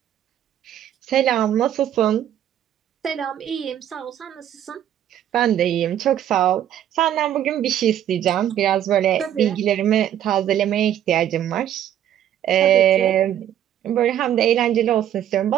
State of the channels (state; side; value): quieter; left; 10.8 dB